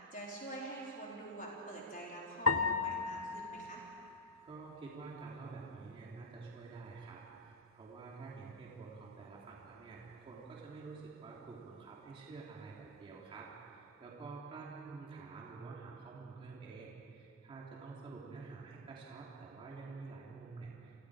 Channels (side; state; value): both; normal; correlation -0.10